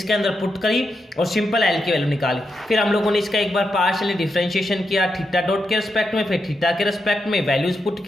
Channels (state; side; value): normal; both; correlation 0.85